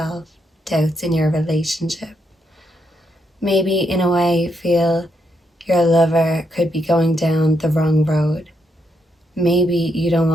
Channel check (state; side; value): normal; both; correlation 0.79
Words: doubts in your relationship. Maybe in a way you feel your lover could be going down the wrong road. Maybe you don't